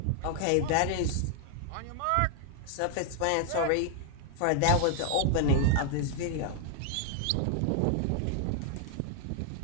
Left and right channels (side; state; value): both; different; correlation 0.00